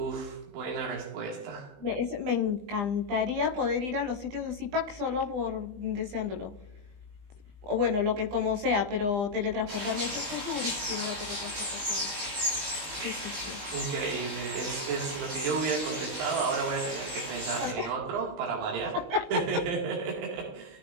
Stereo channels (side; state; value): left; late; 20 ms